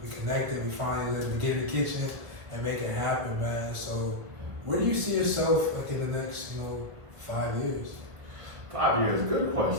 connected, we finally let me get in the kitchen and make it happen, man. So, where do you see yourself like in the next, 5 years? 5 years, good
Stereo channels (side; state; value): left; late; 1.7 ms